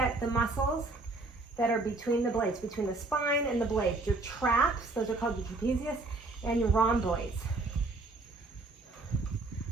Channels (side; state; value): left; quieter; 3.2 dB